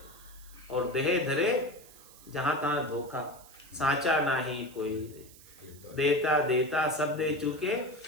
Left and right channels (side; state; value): right; noise; hiss, 21 dB below the sound